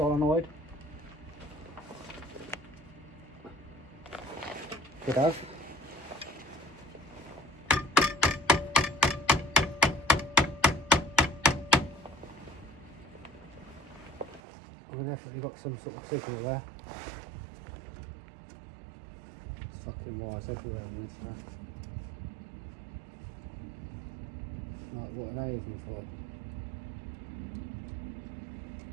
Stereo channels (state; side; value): drops out; left; at 14.4 s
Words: Could have. We've definitely got some sort of signal there. It's fucking wires everywhere on this now. Like, what are they even for?